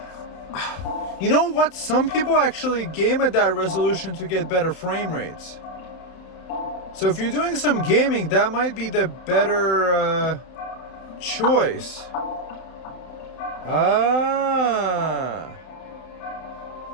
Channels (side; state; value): right; late; 31 ms